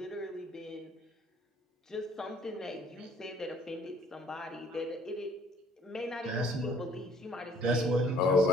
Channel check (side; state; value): both; normal; correlation 0.58